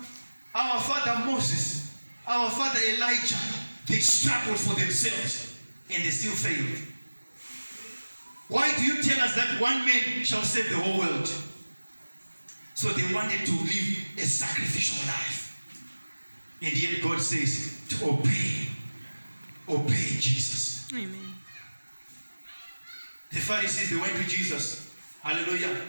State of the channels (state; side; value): inverted; both; correlation -1.00